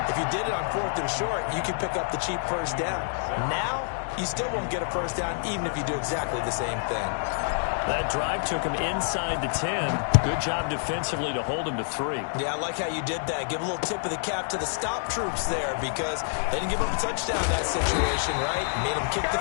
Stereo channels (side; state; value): right; silent; digital silence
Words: If you did it on 4th and short, you could pick up the cheap 1st down. Now, you still won't get a 1st down even if you do exactly the same thing. That drive took him inside the 10. Good job defensively to hold him to 3. Yeah, I like how you did that. Give a little tip of the cap to the stop troops there because they didn't give up a touchdown in that situation, right? Made them kick the